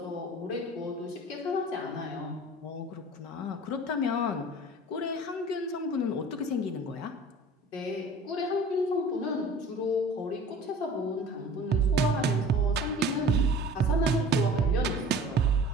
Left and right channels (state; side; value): normal; both; correlation 0.44